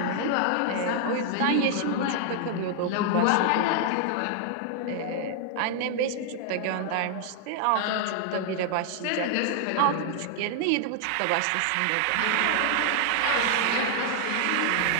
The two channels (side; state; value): both; different; correlation 0.00